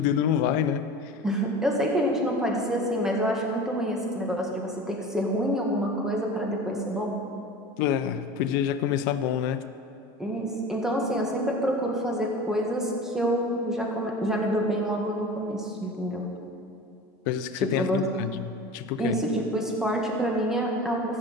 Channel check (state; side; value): normal; both; correlation 0.35